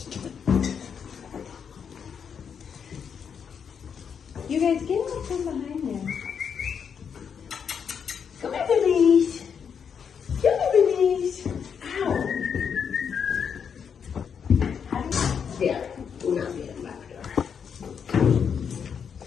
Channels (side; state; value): right; quieter; 7.1 dB